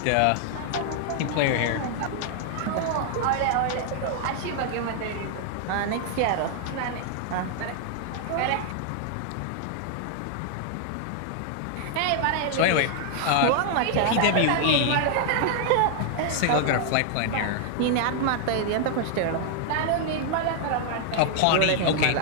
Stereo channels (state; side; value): different; both; correlation 0.00